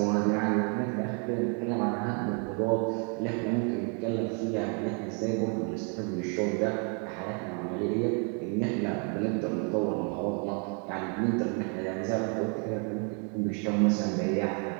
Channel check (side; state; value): left; quieter; 38.4 dB